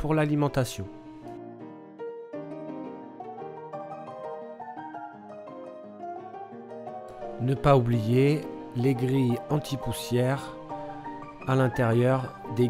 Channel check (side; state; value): both; identical; correlation 1.00